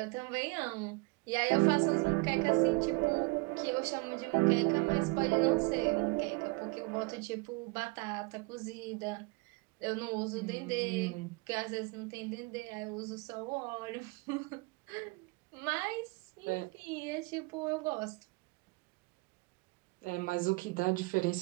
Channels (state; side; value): quieter; left; 27.3 dB